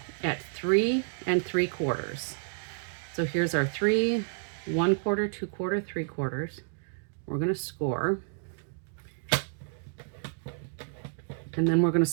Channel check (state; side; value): silent; left; digital silence